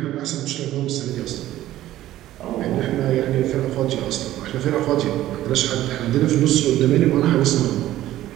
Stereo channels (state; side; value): quieter; left; 14.2 dB